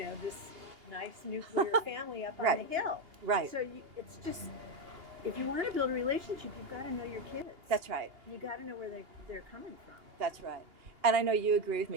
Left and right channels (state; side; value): late; left; 2.8 ms